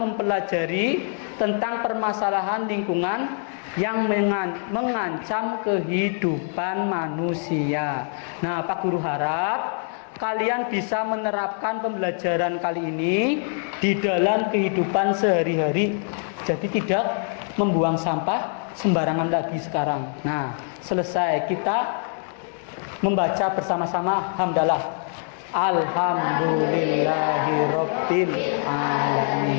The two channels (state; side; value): silent; right; 56 dB below the other